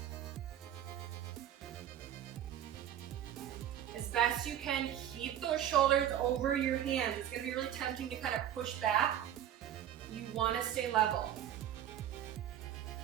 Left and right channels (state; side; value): quieter; left; 10.9 dB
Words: As best you can, keep those shoulders over your hands. It's going to be really tempting to kind of push back. You want to stay level.